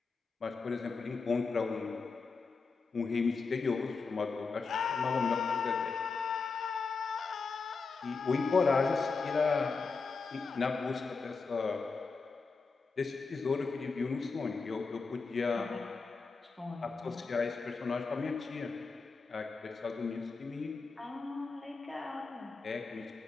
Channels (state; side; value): quieter; right; 4.5 dB